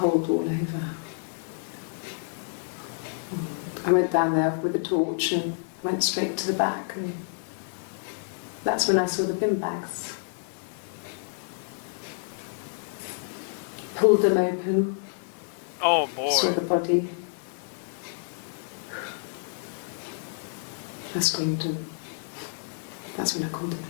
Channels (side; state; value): right; silent; digital silence